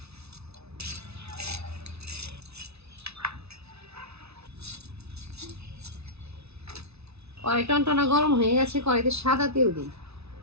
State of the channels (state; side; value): late; left; 0.80 ms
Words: কড়াই টনটনা গরম হয়ে গেছে, কড়াইতে সাদা তেল দিই।